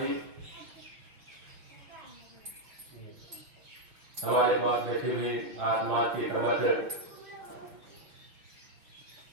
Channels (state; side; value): late; left; 6.0 ms